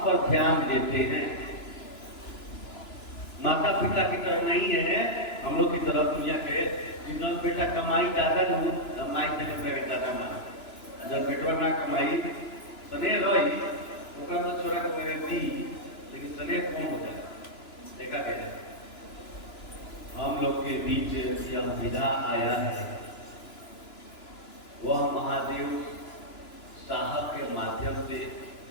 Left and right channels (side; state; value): right; late; 3.0 ms